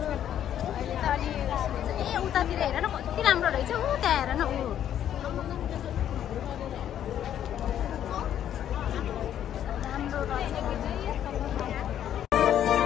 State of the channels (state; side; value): quieter; right; 10.4 dB